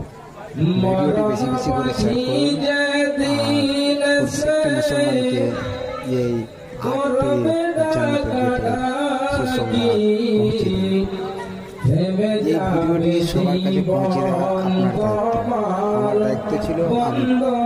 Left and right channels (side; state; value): both; identical; correlation 1.00